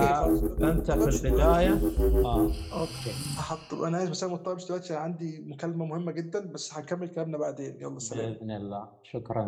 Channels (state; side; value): identical; both; correlation 1.00